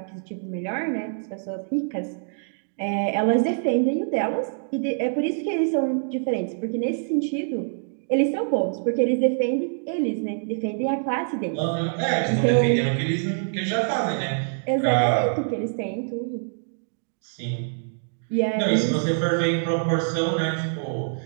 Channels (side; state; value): left; silent; digital silence